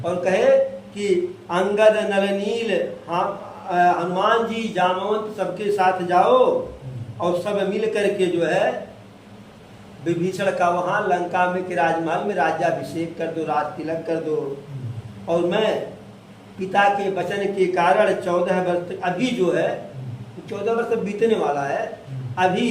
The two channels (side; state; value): both; identical; correlation 1.00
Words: और कहे कि अंगद नल नील, हनुमान जी जामवंत सबके साथ जाओ, और सब मिल करके जो है विभीषण का वहां लंका में के राजमहल में राज्याभिषेक कर दो, राज तिलक कर दो। और मैं पिता के वचन के कारण 14 वर्ष, अभी जो है 14 वर्ष बीतने वाला है, अभी